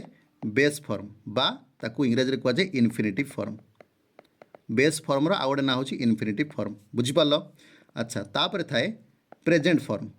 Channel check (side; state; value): both; identical; correlation 1.00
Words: बेस फॉर्म बा ताकू इंग्राजी कह जाए इनफिनिटिव फॉर्म बेस फॉर्मर आउ गोटे ना हूँ इनफिनिटिव फॉर्म बुझीपार अच्छा तापर थाए प्रेजेंट फॉर्म